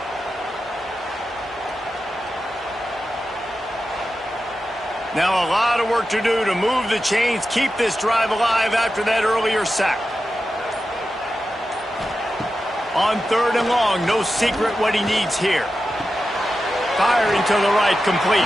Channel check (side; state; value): both; normal; correlation 0.91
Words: Now a lot of work to do to move the chains, keep this drive alive after that earlier sack. On third and long, no secret what he needs here. Firing to the right, complete.